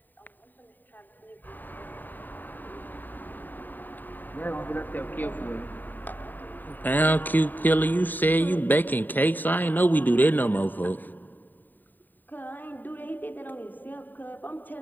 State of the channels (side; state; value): right; late; 0.089 ms